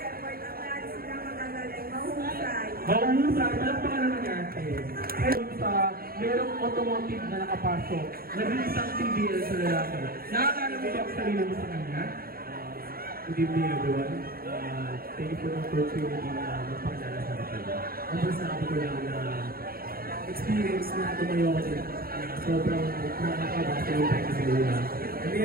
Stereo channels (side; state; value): left; late; 0.43 ms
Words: effort at lahat sila magagaling, mahusay. Mahusay, palakpakan naman natin. Ayun sa merong automotive na nakapasok, naging isang TBL sa lalaki. Nakakala mo ba ang sarili mo sa kanya? Good evening everyone. Thank you for the opportunity na magpakilala sa akin. Ang masasabi ko lang na experience na tumayo ako din. Sobrang nakakaba sa yung tayo sa lula. And